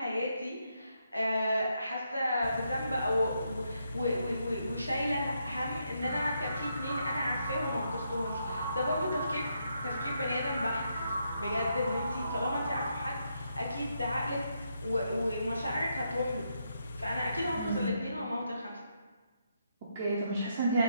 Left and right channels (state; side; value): inverted; both; correlation -0.79